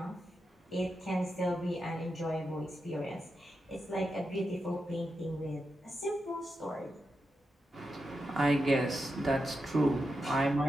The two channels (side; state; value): both; normal; correlation 0.87